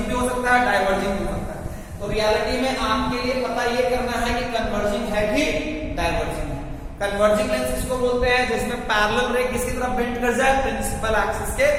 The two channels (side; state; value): both; identical; correlation 1.00